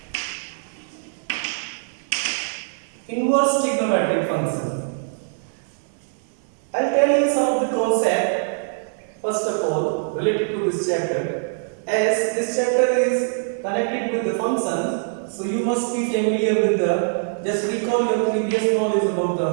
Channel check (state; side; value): silent; left; 62 dB below the other